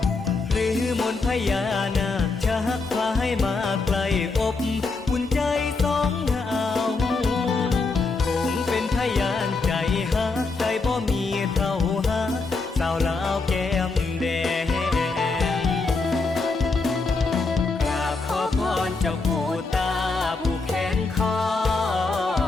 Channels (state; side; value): quieter; right; 3.9 dB